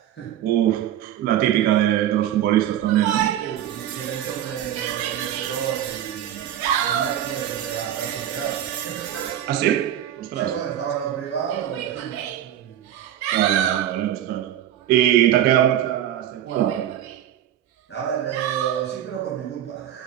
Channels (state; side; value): quieter; left; 11.3 dB